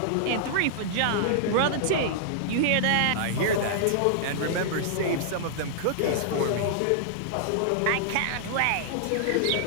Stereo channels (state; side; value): different; both; correlation -0.01